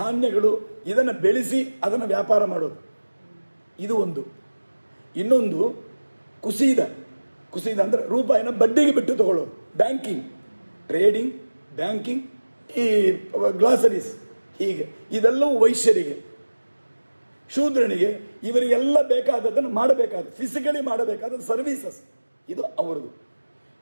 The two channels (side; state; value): both; inverted; correlation -1.00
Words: ಇದನ್ನು ಬೆಳೆಸಿ ಅದನ್ನು ವ್ಯಾಪಾರ ಮಾಡೋದು, ಇದು ಒಂದು. ಇನ್ನೊಂದು ಕುಸಿದ ಅಂದರೆ ರೂಪಾಯಿನ ಬಡ್ಡಿಗೆ ಬಿಟ್ಟು ತಗೊಳ್ಳೋದು, ಬ್ಯಾಂಕಿಂಗ್, ಟ್ರೇಡಿಂಗ್, ಬ್ಯಾಂಕಿಂಗ್, ಈ ಗ್ಲಾಸರೀಸ್, ಹೀಗೆ ಇದೆಲ್ಲವೂ ವೈಶ್ಯರಿಗೆ. ಶೂದ್ರನಿಗೆ ಇವರಿಗೆಲ್ಲ ಬೇಕಾದದ್ದನ್ನು ಮಾಡಬೇಕಾದ ಫಿಸಿಕಲಿ ಮಾಡಬೇಕಾದ ಸರ್ವೀಸಸ್ ಇದು ಅವರದು.